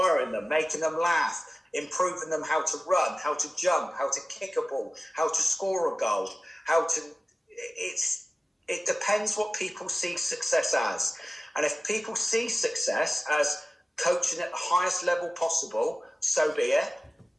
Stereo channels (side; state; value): both; normal; correlation 0.97